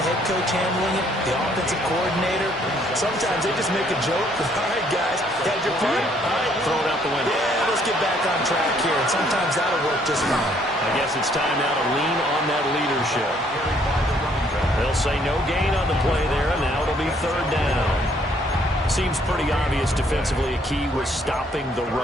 head coach handling it? The offensive coordinator? Sometimes they just make a joke. All right, guys, had your fun? All right, throw it out the window. Yeah, let's get back on track here. And sometimes that'll work just fine. I guess it's time now to lean on that leadership. They'll say no gain on the play there, and now it'll be third down. Seems pretty obvious defensively a key was stopping the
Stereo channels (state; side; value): normal; both; correlation 0.65